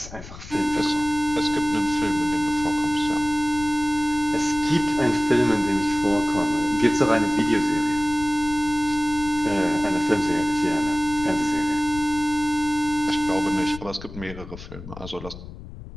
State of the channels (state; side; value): noise; left; rumble, 14 dB below the sound